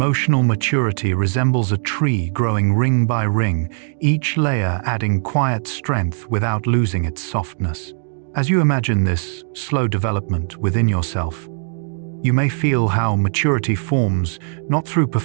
maturity resembles a tree growing ring by ring, each layer adding quiet strength without losing its softness. As you imagine this slow development within yourself, you may feel how maturity forms not through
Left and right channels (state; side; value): silent; left; digital silence